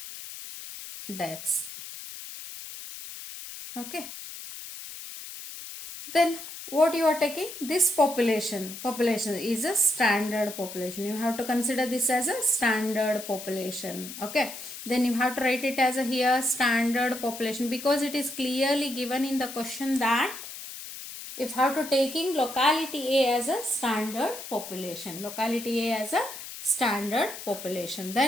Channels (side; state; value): left; noise; hiss, 11 dB below the sound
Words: deaths. Okay, then what you are taking, this population is a standard population. You have to consider this as a standard population. Okay, then you have to write it as a here standard population, because it is clearly given in the question that if you have to taking locality A as a standard population, locality A as a standard population,